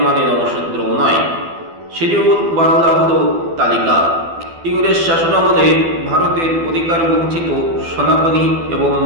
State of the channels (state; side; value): late; left; 12 ms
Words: মানে নমশূদ্র নয়। শিডিউল বাংলা হলো তালিকা। ইংরেজ শাসনামলে ভারতের অধিকার বঞ্চিত সনাতনী এবং